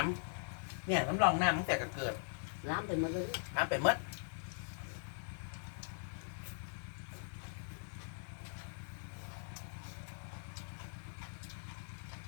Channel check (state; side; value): silent; right; digital silence